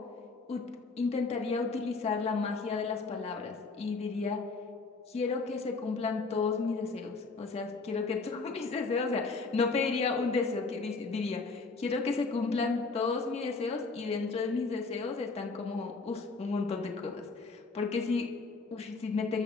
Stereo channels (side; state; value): right; quieter; 4.1 dB